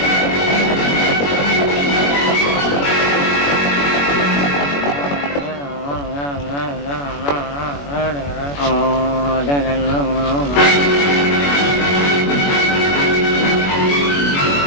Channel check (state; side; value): late; right; 21 ms